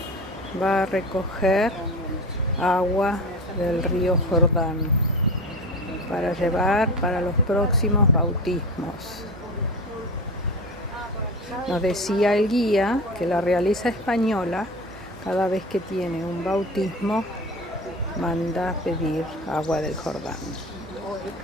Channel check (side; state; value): both; normal; correlation 0.30